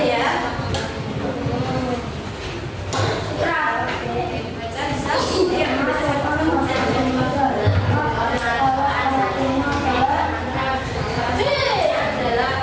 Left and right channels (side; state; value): both; identical; correlation 1.00